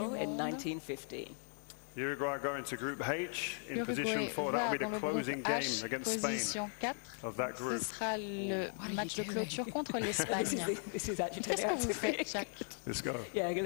Monde. L'Uruguay va dans le groupe H, position 4. Ce sera le match de clôture contre l'Espagne. Qu'est-ce que vous faites, Shaq?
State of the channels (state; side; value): silent; right; 52 dB below the other